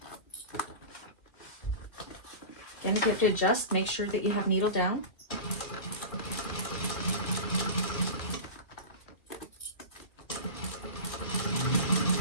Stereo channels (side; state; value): right; late; 2.4 ms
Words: Again, if you have to adjust, make sure that you have needle down.